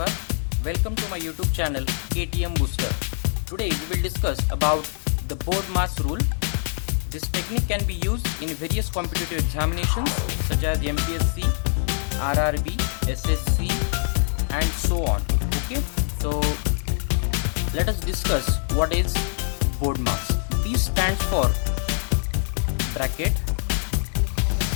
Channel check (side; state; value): right; silent; 62 dB below the other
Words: Welcome to my YouTube channel KTM Booster. Today we will discuss about the BORDMAS rule. This technique can be used in various competitive examinations such as MPSC, RRB, SSC and so on. Okay, so let us discuss what is BORDMAS. This stands for bracket.